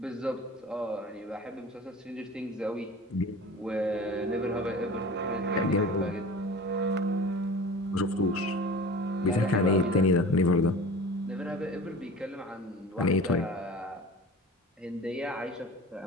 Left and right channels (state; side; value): normal; both; correlation 0.37